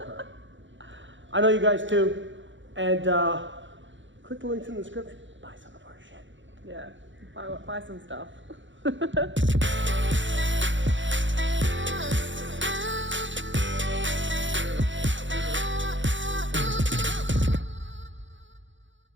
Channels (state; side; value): late; left; 0.55 ms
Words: her. I know you guys too. And click the links in the description. Buy some of our shit. Yeah, buy some stuff.